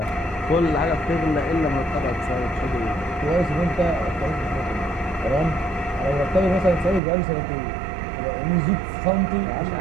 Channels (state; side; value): drops out; left; at 7.0 s